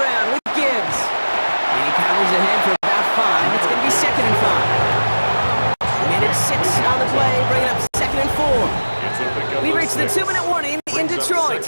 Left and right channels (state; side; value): inverted; both; correlation -1.00